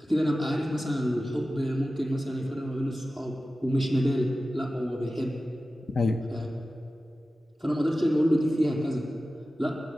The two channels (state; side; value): normal; both; correlation 0.95